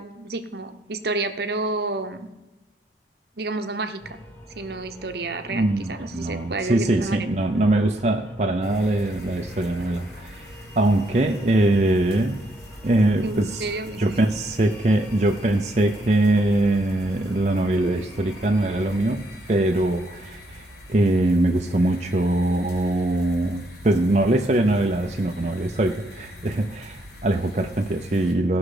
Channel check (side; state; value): both; normal; correlation 0.73